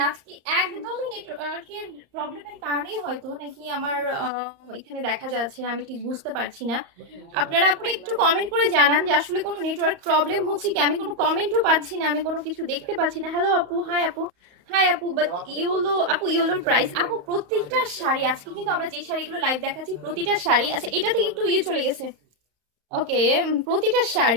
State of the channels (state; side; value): late; left; 34 ms